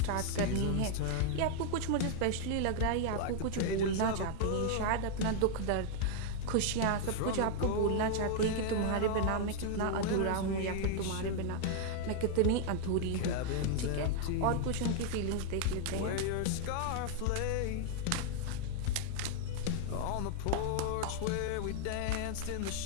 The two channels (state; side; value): different; both; correlation 0.00